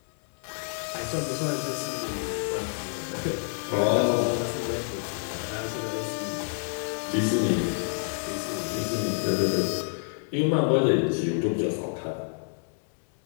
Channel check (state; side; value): silent; right; digital silence